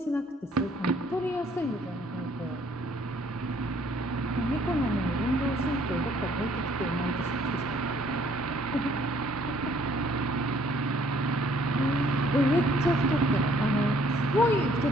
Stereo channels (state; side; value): normal; both; correlation 0.61